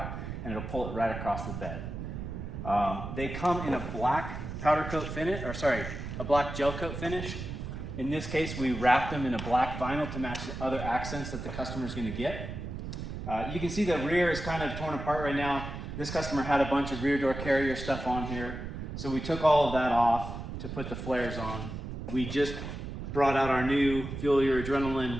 and it'll pull it right across the bed. They come in a black powder coat finish, or sorry, a black gel coat finish. In this case, we wrapped them in a black vinyl to match the other accents that the customer's gonna get. You can see the rear is kind of torn apart right now. This customer had a bunch of rear door carrier stuff on here. So we took all of that off to put the flares on. We just brought out our new Fuel Your Adrenaline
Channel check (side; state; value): right; noise; rumble, 7 dB below the sound